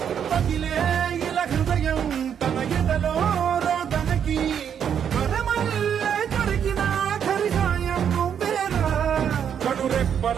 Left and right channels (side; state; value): left; quieter; 8.3 dB